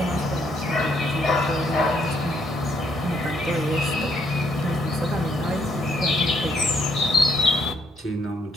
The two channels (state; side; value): normal; both; correlation 0.71